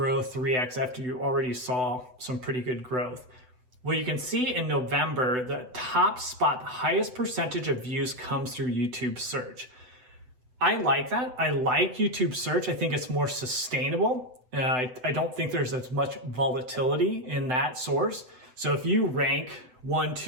3x after you already saw some pretty good growth? Well, you can see in November, the top spot, the highest percentage of views comes through YouTube search. I like that. I like YouTube search. I think it's more sustainable. I don't think there's as much volatility in that source. So if you rank 1,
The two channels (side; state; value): left; late; 7.9 ms